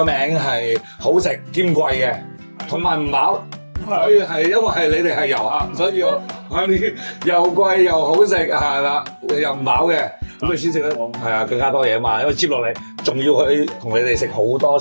名係好食兼貴嘅，同埋唔飽。所以係因為你哋係遊客，所以我啲又貴又好食係啦，又唔飽嘅，咁你先食得係啊更加多嘢啊嘛，因為接落嚟仲要去同你哋食好多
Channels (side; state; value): both; inverted; correlation -1.00